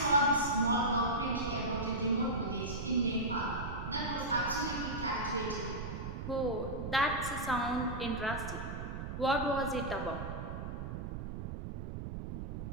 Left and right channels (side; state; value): right; noise; rumble, 6 dB below the sound